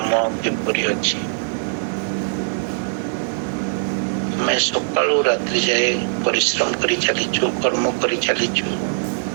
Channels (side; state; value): left; silent; digital silence